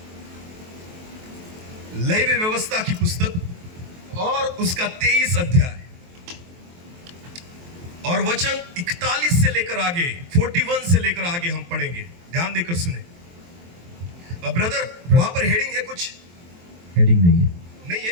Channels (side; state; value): left; late; 23 ms